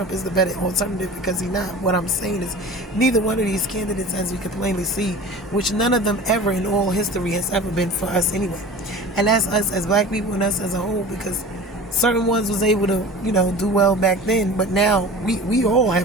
is the better alternative, because he's not. What I'm saying is neither one of these candidates, as we can plainly see, which none of them ever in all history has ever been for us anyway. And that's us as black people and us as a whole, because certain ones was able to, do well back then, but now we all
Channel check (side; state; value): both; normal; correlation 0.38